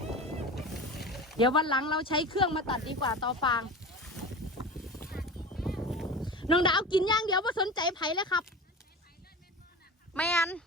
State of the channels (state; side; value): normal; both; correlation 0.32